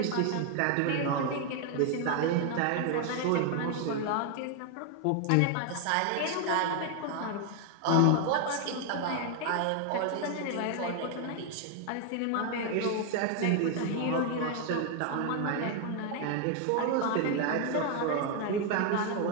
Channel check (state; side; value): different; both; correlation 0.00